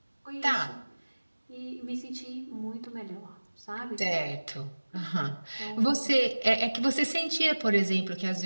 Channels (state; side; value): inverted; both; correlation -1.00